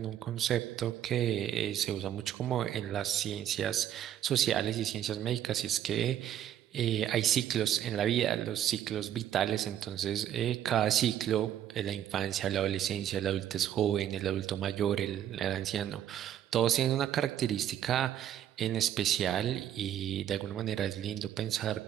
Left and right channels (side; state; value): left; quieter; 10.8 dB